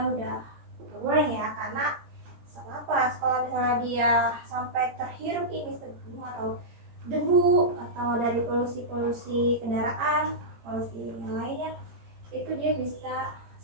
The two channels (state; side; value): late; left; 17 ms